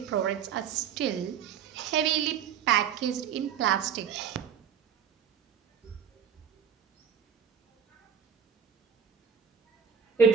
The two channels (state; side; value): quieter; left; 7.6 dB